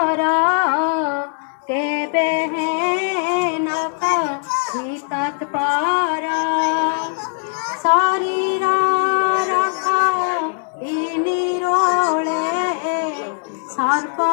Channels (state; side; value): silent; right; 66 dB below the other